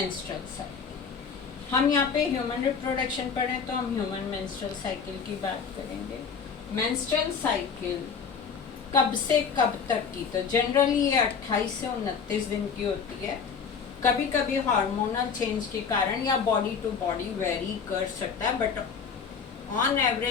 cycle. हम यहाँ पे ह्यूमन रिप्रोडक्शन पढ़ें तो हम ह्यूमन मेंस्ट्रुअल साइकिल की बात करेंगे। मेंस्ट्रुअल साइकिल कब से कब तक की? तो जनरली ये 28 से 29 दिन की होती है। कभी कभी हार्मोनल चेंज के कारण या बॉडी टू बॉडी वेरी कर सकता है, बट ऑन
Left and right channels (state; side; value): quieter; right; 6.1 dB